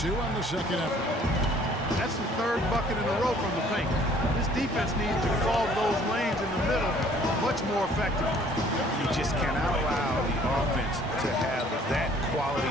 on the second effort. That's the 3rd bucket in a row from the paint. This defense needs to clog those lanes in the middle much more effectively. You just cannot allow the offense to have that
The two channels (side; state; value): both; normal; correlation 0.57